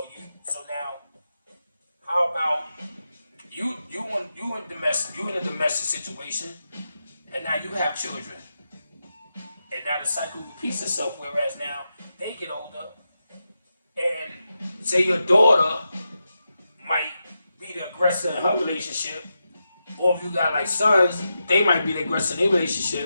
now, how about you in a domestic situation and now you have children. And now the cycle repeats itself, whereas now they get older and say your daughter might be the aggressor in her relationship, or if you got like sons, they might be the aggressor in their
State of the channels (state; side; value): inverted; both; correlation -0.88